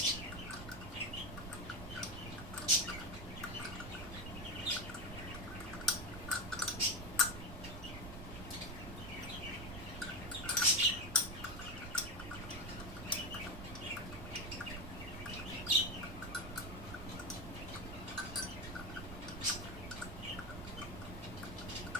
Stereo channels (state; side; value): noise; right; rumble, 9 dB below the sound